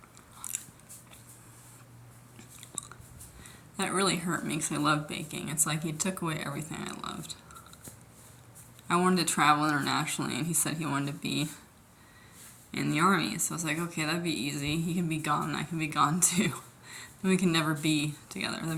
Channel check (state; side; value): identical; both; correlation 1.00